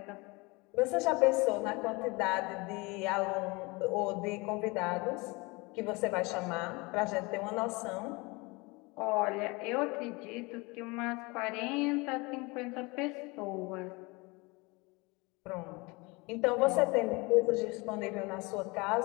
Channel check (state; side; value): quieter; right; 25.7 dB